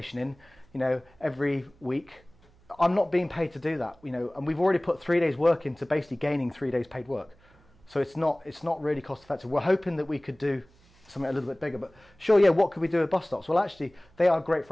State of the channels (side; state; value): right; noise; hum, 29 dB below the sound